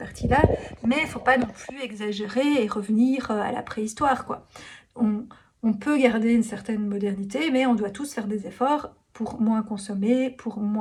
mais il faut pas non plus exagérer et revenir, à la préhistoire, quoi. On on peut garder une certaine modernité, mais on doit tous faire des efforts pour moins consommer, pour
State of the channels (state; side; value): identical; both; correlation 1.00